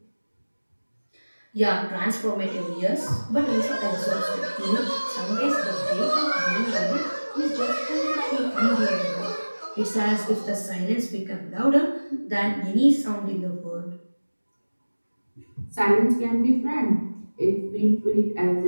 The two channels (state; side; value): inverted; both; correlation -1.00